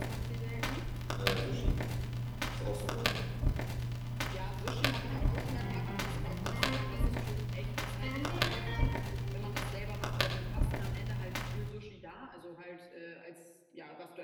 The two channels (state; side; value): identical; both; correlation 1.00